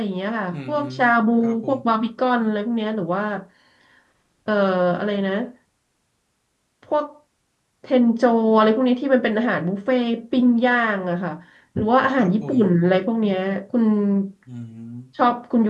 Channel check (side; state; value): both; identical; correlation 1.00